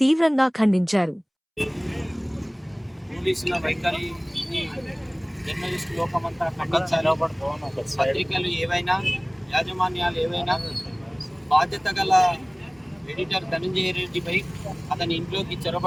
తీవ్రంగా ఖండించారు. పోలీసుల వైఖరి జర్నలిస్ట్ లోకమంతా ఖండించారు. పత్రికలు ఏవైనా, యాజమాన్యాలు ఏవైనా బాధ్యత గల ఎడిటర్ ధనంజయ రెడ్డిపై అతని ఇంట్లోకి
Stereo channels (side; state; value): both; identical; correlation 1.00